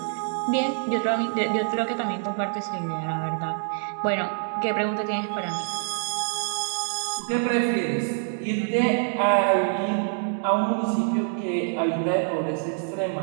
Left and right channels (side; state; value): left; silent; 61 dB below the other